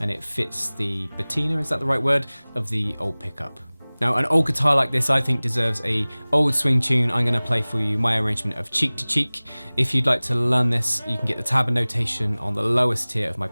and it fits the patina, is that the right word, of the old pickup. Now an old guitar like this I think deserves a old swing tune. I'm going to play for you my arrangement of Cheek to Cheek. If you'd like to learn this, you can get the tab and notation on the lowest tier of my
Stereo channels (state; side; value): inverted; both; correlation -1.00